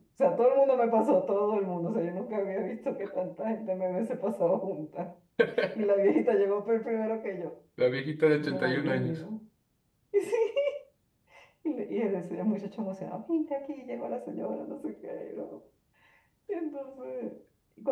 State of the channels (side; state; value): both; identical; correlation 1.00